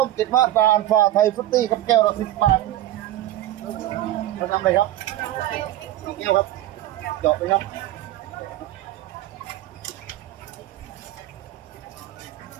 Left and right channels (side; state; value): left; quieter; 13.8 dB